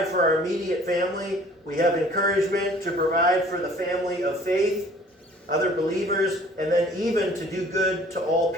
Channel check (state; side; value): normal; both; correlation 0.52